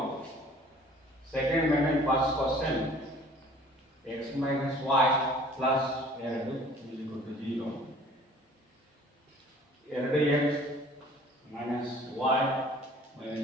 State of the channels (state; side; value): normal; both; correlation 0.51